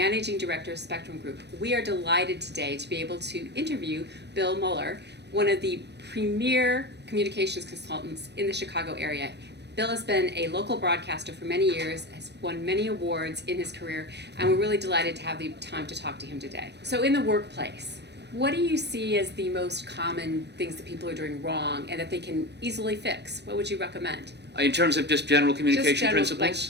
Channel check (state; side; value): late; left; 0.50 ms